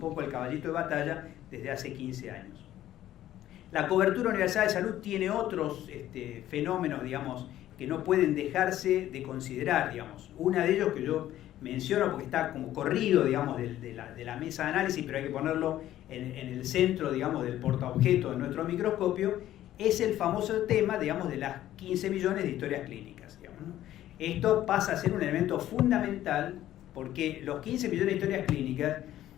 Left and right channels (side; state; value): right; quieter; 13.1 dB